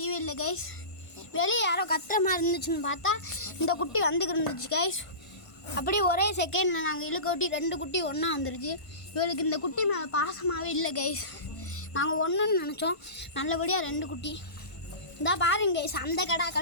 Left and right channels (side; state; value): right; late; 1.5 ms